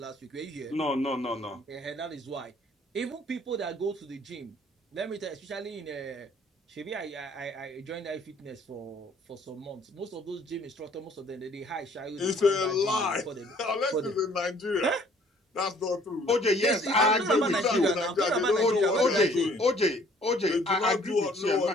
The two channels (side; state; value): both; normal; correlation 0.58